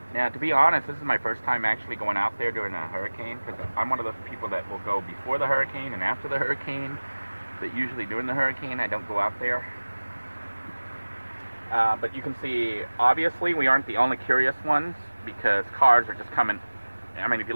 Now, to be honest, this is my first time actually going out there during a hurricane, because I'm one of those people that will go before the hurricane and after the hurricane, but usually during the hurricane I don't go out there. But you can see, obviously, we aren't the only curious ones, because cars are just coming. I mean, if you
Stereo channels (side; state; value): both; inverted; correlation -1.00